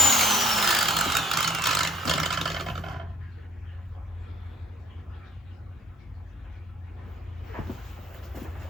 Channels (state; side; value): normal; both; correlation 0.52